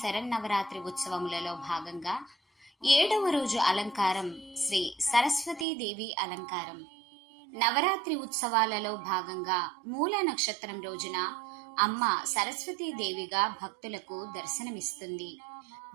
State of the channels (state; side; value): drops out; left; at 5.7 s